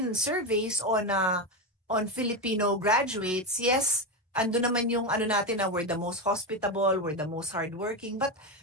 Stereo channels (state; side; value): normal; both; correlation 0.13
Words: surveys on Filipino graduates, yes, ando naman yung natin na we're the most hospitable, we're the most hardworking, but